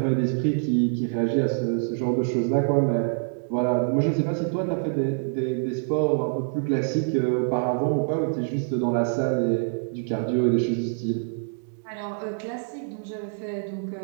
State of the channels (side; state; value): left; silent; digital silence